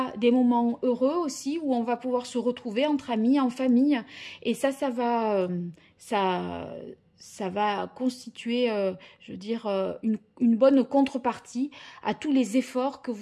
des moments heureux aussi où on va pouvoir se retrouver entre amis, en famille et ça va constituer, je veux dire, une bonne contrepartie à tous les efforts que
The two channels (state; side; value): identical; both; correlation 1.00